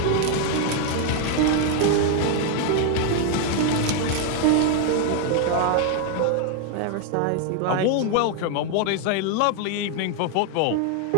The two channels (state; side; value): different; both; correlation 0.00